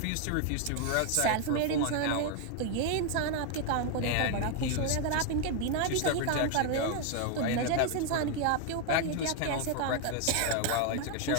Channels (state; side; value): different; both; correlation 0.00